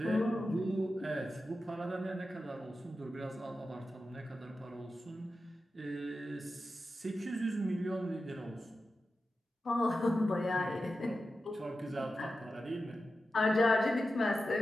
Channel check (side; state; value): both; normal; correlation 0.92